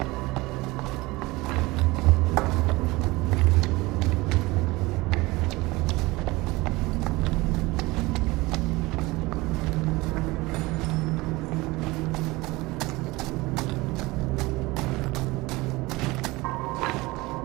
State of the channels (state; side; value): quieter; left; 21.6 dB